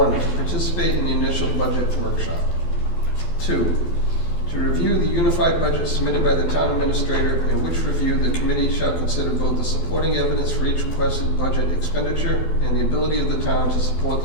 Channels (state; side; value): late; right; 12 ms